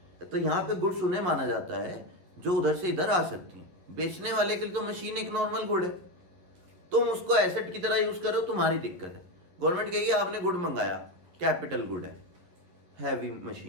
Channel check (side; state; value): left; late; 11 ms